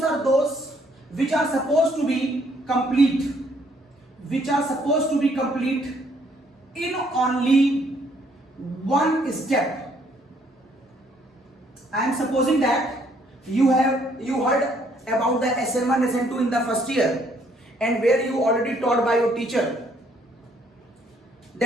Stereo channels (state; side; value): normal; both; correlation 0.66